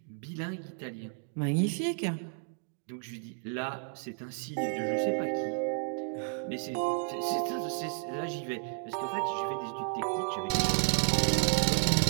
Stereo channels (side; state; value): left; silent; 56 dB below the other